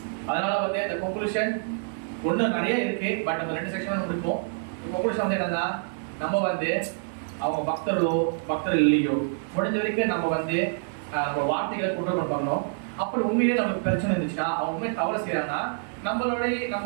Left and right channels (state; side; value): silent; left; digital silence